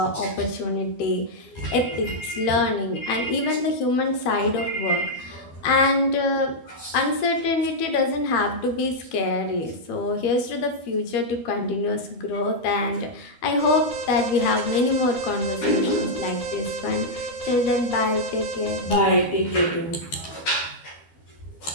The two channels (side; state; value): right; late; 12 ms